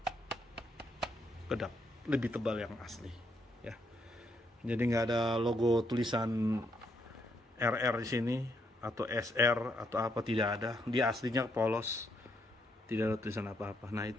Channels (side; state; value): both; normal; correlation 0.75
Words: kedap, lebih tebal yang asli ya. Jadi nggak ada logo tulisan RR di sini atau SR atau apa, tidak ada. Dia aslinya polos, tidak ada tulisan apa-apa. Nah,